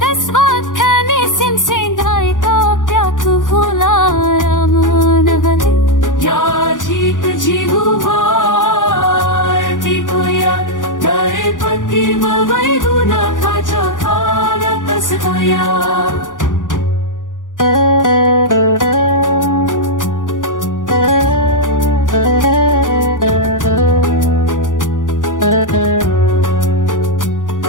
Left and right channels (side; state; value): right; late; 0.88 ms